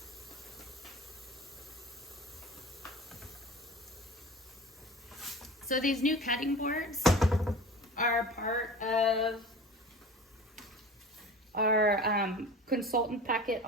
So these new cutting boards are part of our consultant packet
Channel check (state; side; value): normal; both; correlation 0.37